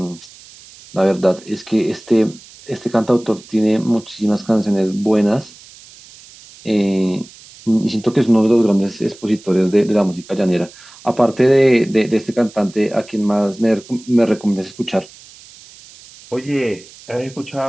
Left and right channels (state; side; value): noise; right; hiss, 22 dB below the sound